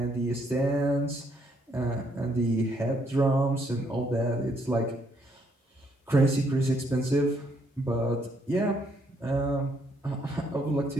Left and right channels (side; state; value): both; normal; correlation 0.71